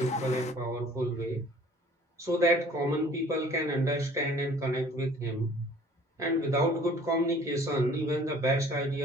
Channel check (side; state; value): both; normal; correlation 0.53